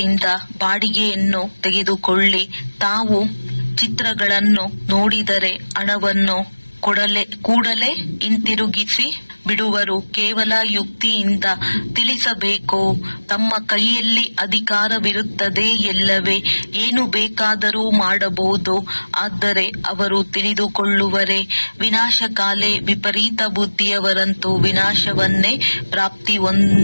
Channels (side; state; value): both; inverted; correlation -1.00